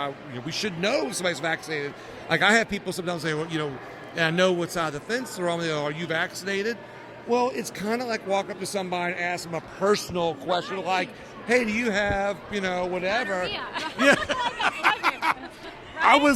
we should know if somebody's vaccinated. Like I have people sometimes say, well, and I know what side of the fence they're on. Are you vaccinated? Well, it's kind of like walk up to somebody and ask them a personal question, like, "Hey, do you have whatever?" Yeah. I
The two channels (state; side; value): identical; both; correlation 1.00